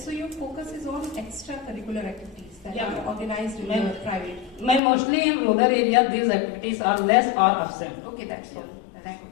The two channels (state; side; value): drops out; right; at 4.8 s